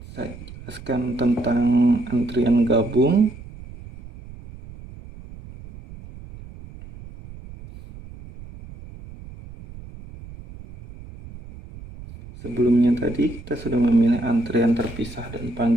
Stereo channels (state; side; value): noise; right; rumble, 16 dB below the sound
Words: saya jelaskan tentang antrian gabung. Sebelumnya tadi kita sudah memilih antrian terpisah dan